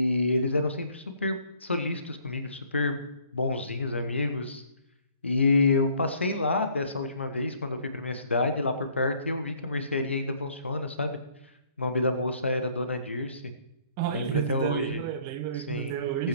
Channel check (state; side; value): inverted; both; correlation -0.60